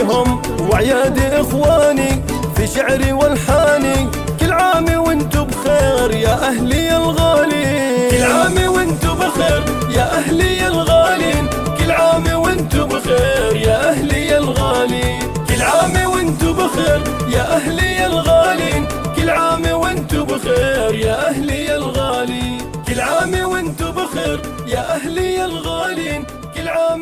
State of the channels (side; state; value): both; identical; correlation 1.00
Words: وعياد اخواني في شعري والحاني. كل عام وانتو بخير يا اهلي الغالين، كل عام وانتو بخير يا اهلي الغالين، كل عام وانتو بخير يا اهلي الغالين، كل عام وانتو بخير يا اهلي الغالين، كل عام وانتو بخير يا اهلي الغالين، كل عام وانتو بخير يا أهلي الغالين، كل عام